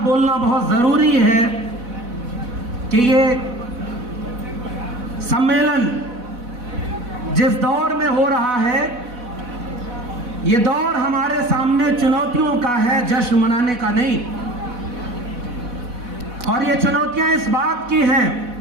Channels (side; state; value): left; late; 4.1 ms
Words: बोलना बहुत जरूरी है कि ये सम्मेलन जिस दौर में हो रहा है, ये दौर हमारे सामने चुनौतियों का है, जश्न मनाने का नहीं। और ये चुनौतियां इस बात की हैं